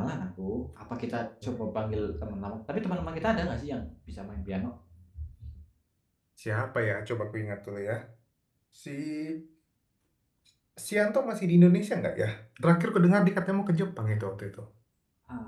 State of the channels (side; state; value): both; identical; correlation 1.00